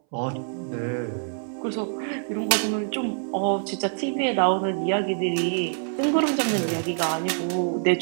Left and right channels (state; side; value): silent; left; 61 dB below the other